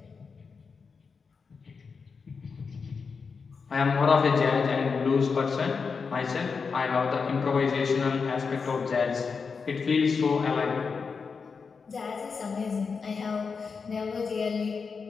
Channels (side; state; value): right; quieter; 5.3 dB